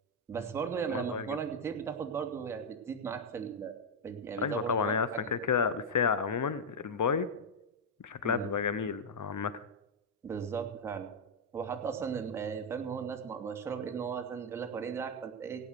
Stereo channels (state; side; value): normal; both; correlation 0.00